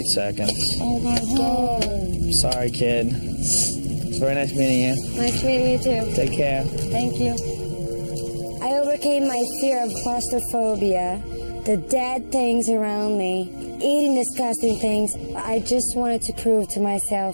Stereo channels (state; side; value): inverted; both; correlation -1.00